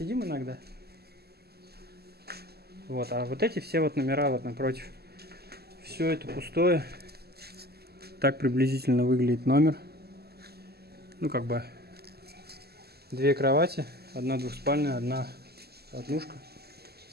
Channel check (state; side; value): late; left; 0.46 ms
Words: иногда. Вот, а вот эти все вот номера вот напротив. Все это пустое. Так приблизительно выглядит номер. Ну, как бы 2 кровати, одна двухспальная, одна однушка.